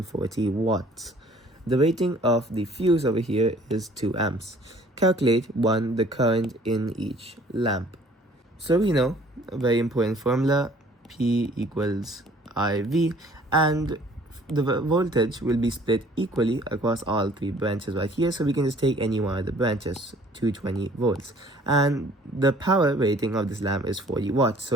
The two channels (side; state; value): both; normal; correlation 0.55